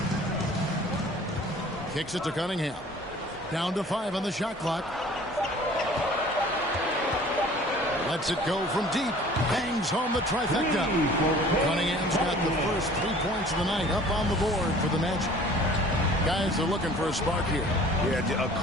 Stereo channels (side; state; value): both; normal; correlation 0.49